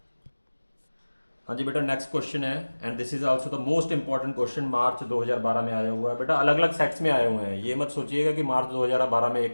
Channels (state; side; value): inverted; both; correlation -1.00